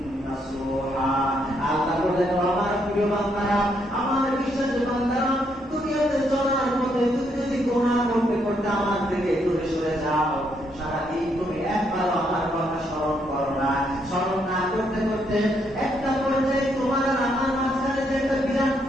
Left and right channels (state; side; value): normal; both; correlation 0.75